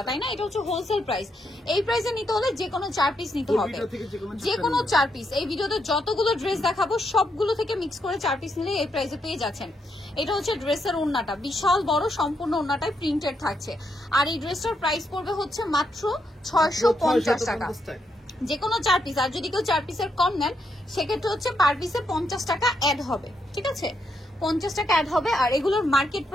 তাই না? এটা হচ্ছে হোলসেল প্রাইস। এই প্রাইসে নিতে হলে যে কোনো 4 পিস নিতে হবে, যে কোনো 4 পিস। এই ভিডিওতে যতগুলো ড্রেস দেখাবো সবগুলো থেকে মিক্স করে 4 পিস নিলে এই প্রাইসে পেয়ে যাচ্ছেন। এটা হচ্ছে ড্রেসের ওড়নাটা, বিশাল বড়, সম্পূর্ণ ওড়নাটাই প্রিন্টেড থাকছে। আর এই ড্রেসটার প্রাইস পড়বে হচ্ছে মাত্র 650 টাকা, যে কোনো 4 পিস। আর যদি কেউ 4 পিসের কম নেন সেক্ষেত্রে হচ্ছে পার পিসে 50 টাকা অ্যাড হবে, ঠিক আছে? 50 টাকা অ্যাড হবে। আর এগুলোর মার্কেট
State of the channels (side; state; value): both; normal; correlation 0.79